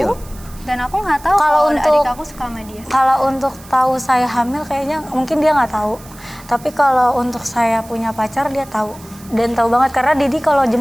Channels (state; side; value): noise; right; hiss, 21 dB below the sound